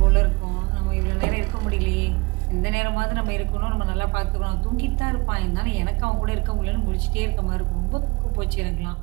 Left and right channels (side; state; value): left; quieter; 25.6 dB